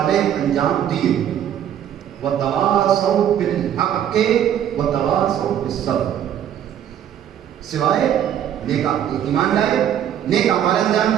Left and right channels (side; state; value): left; quieter; 10.1 dB